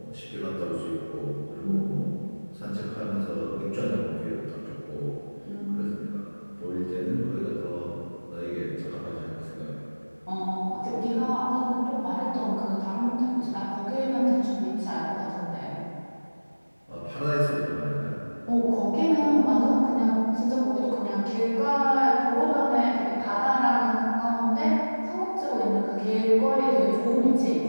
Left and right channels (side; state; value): both; inverted; correlation -1.00